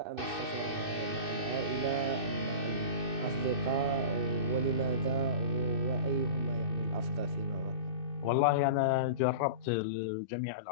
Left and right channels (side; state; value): left; late; 2.6 ms